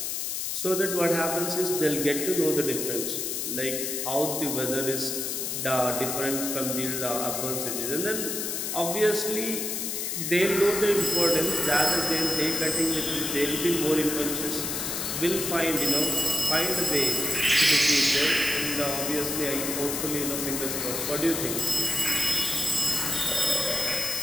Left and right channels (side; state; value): left; noise; hiss, 2 dB below the sound